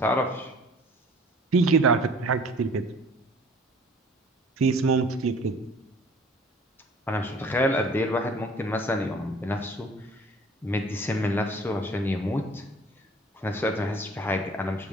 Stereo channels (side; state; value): both; normal; correlation 0.50